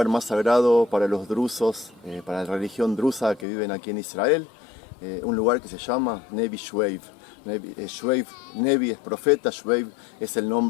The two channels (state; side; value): drops out; right; at 3.5 s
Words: más sagrado para los drusos, para la religión drusa que viven aquí en Israel, un lugar que se llama Nevi Shveiv. Nevi es profeta, Shveiv es el